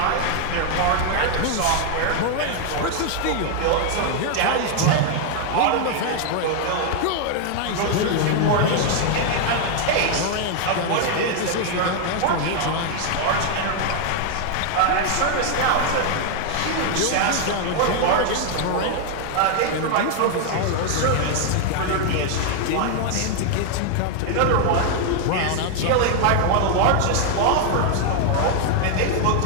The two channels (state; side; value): different; both; correlation 0.00